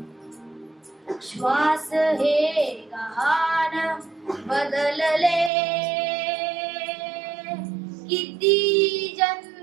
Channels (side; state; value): left; drops out; at 5.5 s